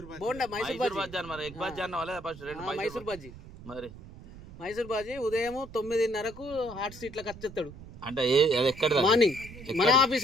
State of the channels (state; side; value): noise; right; rumble, 16 dB below the sound